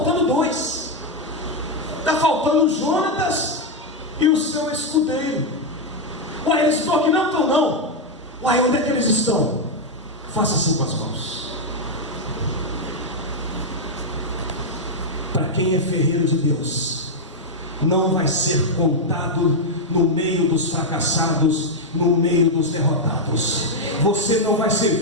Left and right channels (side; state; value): both; normal; correlation 0.01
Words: 2, está faltando Jonatas e o seu escudeiro. Uai, eles estão aqui? Não estão não. Uai, onde é que eles estão? Faça assim com as mãos. Para quem é ferreiro de Deus, não vai ser contado no meio dos fracassados, no meio dos derrotados. Você não vai ser